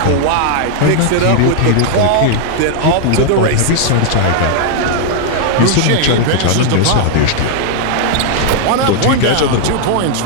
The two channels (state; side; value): different; both; correlation -0.01